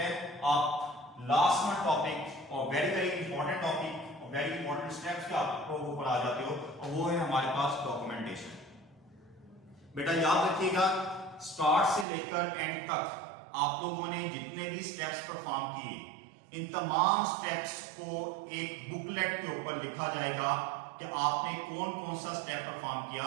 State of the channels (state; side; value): drops out; left; at 12.1 s